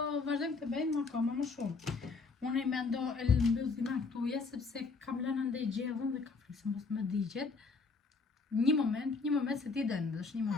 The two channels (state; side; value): quieter; right; 4.3 dB